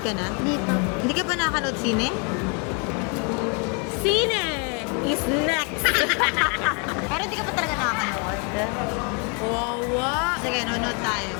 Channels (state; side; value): quieter; right; 34.1 dB